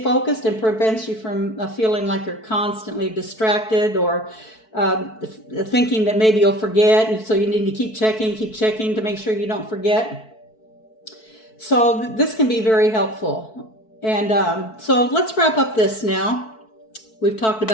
focused and prevents you from feeling like you're constantly distracted or thinking that maybe you'll forget, and so you need to keep checking to make sure you don't forget. So this can be very helpful. And so let's wrap up this now. We've talked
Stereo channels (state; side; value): late; right; 4.6 ms